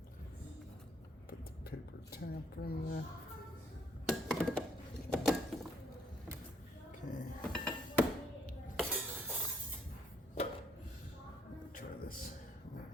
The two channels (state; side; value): normal; both; correlation 0.68